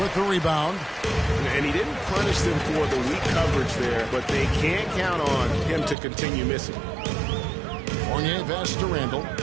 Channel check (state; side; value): drops out; left; at 6.0 s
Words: the rebound. And he didn't punish them for the weak coverage there, but they can't count on him to continue missing. Fournier pass to Randall.